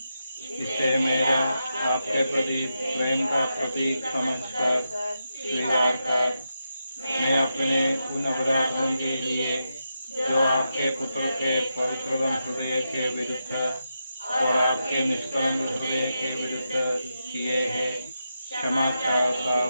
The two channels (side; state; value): both; inverted; correlation -0.87